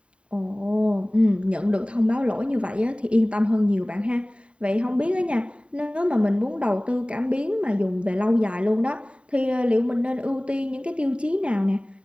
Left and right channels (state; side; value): late; left; 0.059 ms